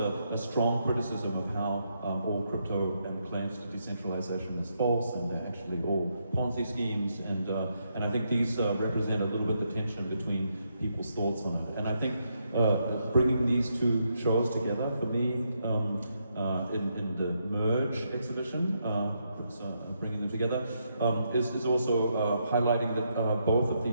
strong criticism of how all crypto and claims to decentralization is false, and they're actually all Ponzi schemes. And I think these represent a little bit the tension between people's thoughts on it. And I think bringing these two shows together for me in the Merge exhibition, bringing them together, is also highlighting that both of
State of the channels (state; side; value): inverted; both; correlation -0.79